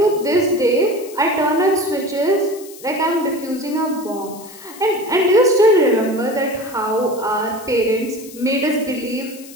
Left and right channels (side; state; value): left; noise; hiss, 18 dB below the sound